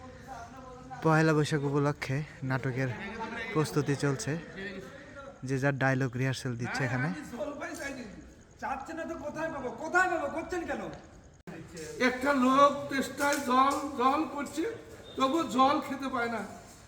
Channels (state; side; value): identical; both; correlation 1.00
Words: পহেলা বৈশাখ উপলক্ষে নাটকের প্রস্তুতি চলছে, যে যার ডায়লগ রিহার্সেল দিচ্ছে এখানে। চাচ্ছে না তো কোথায় পাবো কোথায় পাবো করছেন কেন? একটা লোক তেষ্টায় জল জল করছে, তবু জল খেতে পায় না,